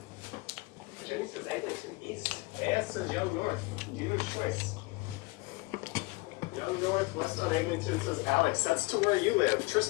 Jenny says Eglinton East. AS says Young North. Dealer's choice. Young North, West on Eglinton, says Alex. That's to where you live.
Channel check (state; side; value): quieter; right; 24.8 dB